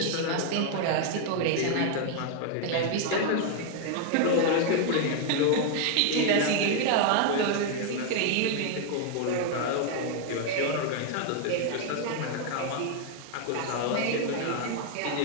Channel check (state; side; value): different; both; correlation 0.00